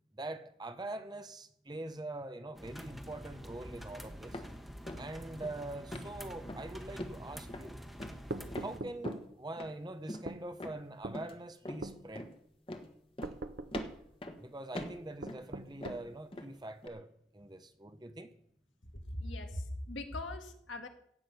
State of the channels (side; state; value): both; normal; correlation 0.68